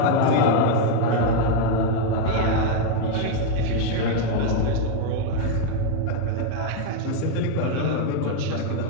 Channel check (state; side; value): different; both; correlation 0.01